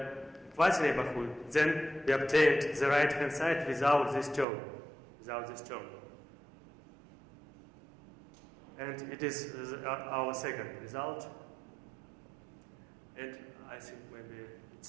quasi-neighborhood, then we obtained the right-hand side without this term. And it is our second result. And I think maybe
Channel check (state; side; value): drops out; left; at 4.5 s